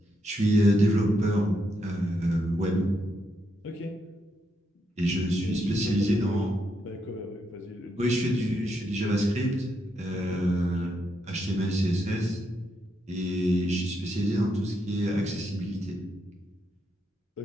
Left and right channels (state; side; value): normal; both; correlation 0.80